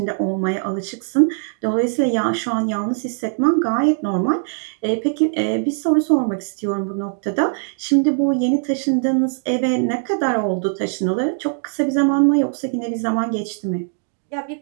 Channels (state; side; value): silent; left; digital silence